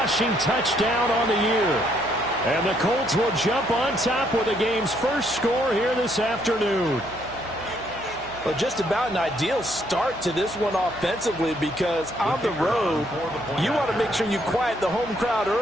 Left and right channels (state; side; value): noise; right; hum, 19 dB below the sound